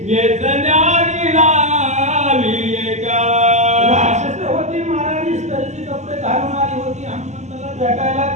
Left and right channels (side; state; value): left; late; 0.33 ms